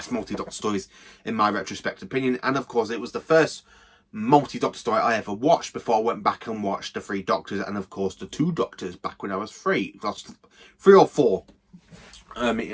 multi-doctor stories in my retrospective opinion. And of course, it was the first multi-doctor story I ever watched before I went back and watched the Three Doctors and of course the Two Doctors back when I was 3 or 4.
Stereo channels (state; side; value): identical; both; correlation 1.00